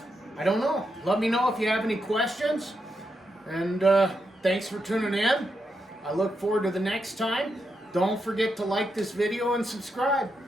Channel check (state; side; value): normal; both; correlation 0.84